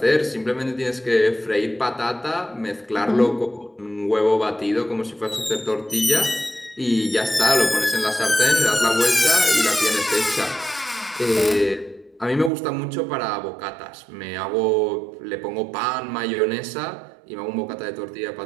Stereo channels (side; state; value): left; drops out; at 12.5 s